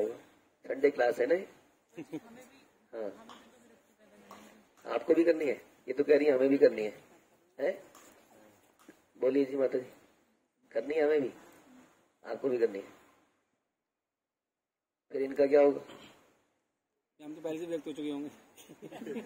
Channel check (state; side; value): identical; both; correlation 1.00